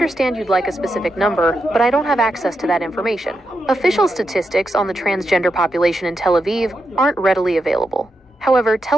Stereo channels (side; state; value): both; normal; correlation 0.85